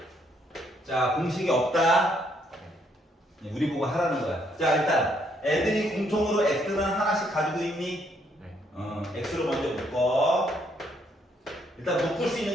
자, 공식이 없다. 우리 보고 하라는 거야. 자, 일단 애들이 공통으로 x는 하나씩 가지고 있니? 네. x로 먼저 묶어. 일단 묶을 수 있는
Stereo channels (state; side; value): normal; both; correlation 0.71